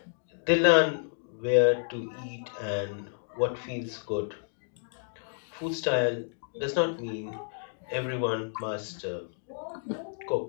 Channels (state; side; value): silent; right; digital silence